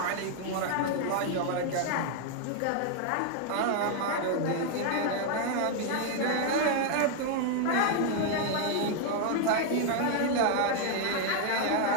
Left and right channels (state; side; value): different; both; correlation 0.00